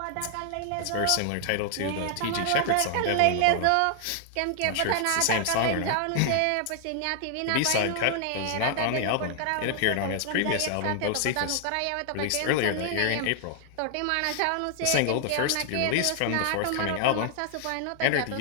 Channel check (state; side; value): different; both; correlation 0.00